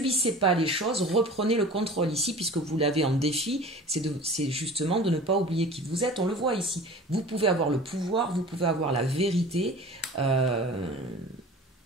pas les choses, reprenez le contrôle ici, puisque vous l'avez en défi, c'est justement de ne pas oublier qui vous êtes, on le voit ici. Vous pouvez avoir le pouvoir, vous pouvez avoir la vérité.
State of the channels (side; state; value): both; normal; correlation 0.40